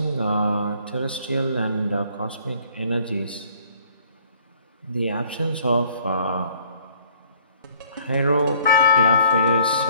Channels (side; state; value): both; inverted; correlation -0.59